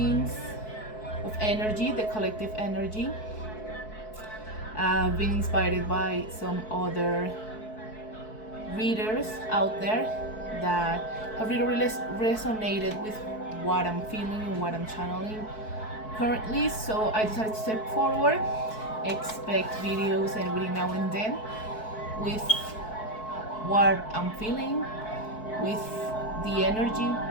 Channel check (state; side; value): late; right; 4.6 ms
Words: of energy, the collective energy. I've been inspired by some other readers out there that have really resonated with what I'm feeling and what I'm channeling currently. So I decided to step forward, expect videos and reading now and then with what I'm feeling, with the energy.